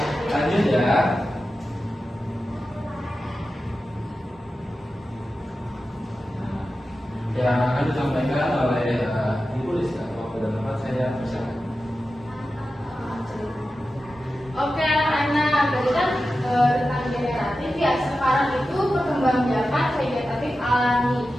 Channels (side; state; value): both; normal; correlation 0.92